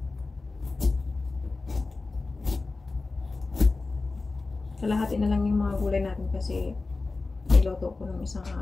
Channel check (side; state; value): right; quieter; 3.7 dB